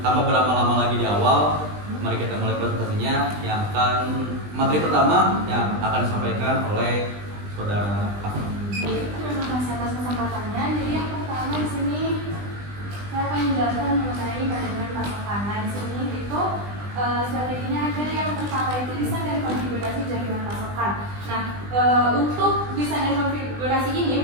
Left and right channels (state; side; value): late; left; 20 ms